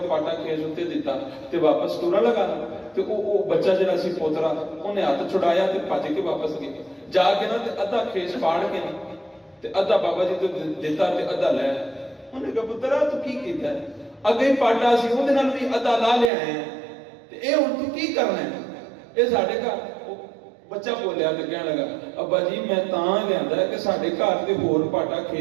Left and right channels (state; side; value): drops out; left; at 16.3 s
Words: پاٹا کھیس اُتے دتا تے واپس ٹرن لگا تے او بچہ جڑا سی پوترا اونے ہاتھ چھڑایا تے بھج کے واپس گیا جا کے نا تے ادھا کھیس پاڑ کے تے ادھا بابا جی تو دتا تے ادھا لے انہیں کہا پترا تو کی کیتا ہے اگے پاٹا سی اودے نال بھی ادھا لا لیا ہے تے اے ہن تو کی کرنا ہے اے ساڈے گھر بچہ بولیا تے کہنے لگا ابا جی میں تاں لیندا ہے کہ ساڈے گھر تے ہور پاٹا